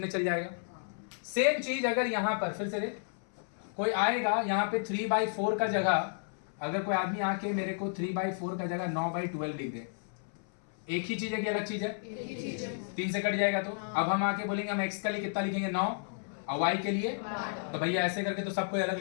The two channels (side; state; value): right; silent; 56 dB below the other